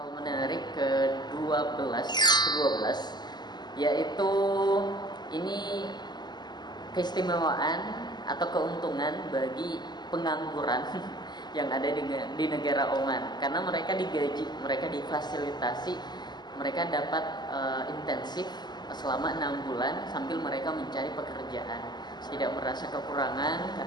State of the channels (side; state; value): right; late; 0.21 ms